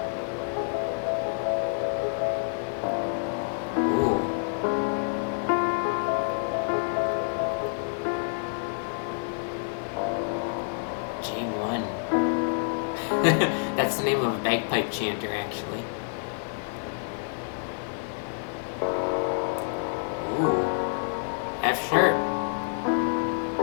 Ooh. J1. That's the name of a bagpipe chanter, actually. Ooh. F sharp.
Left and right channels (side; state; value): right; silent; digital silence